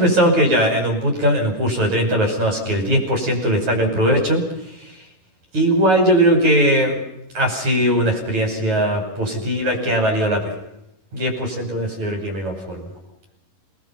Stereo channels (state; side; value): late; left; 11 ms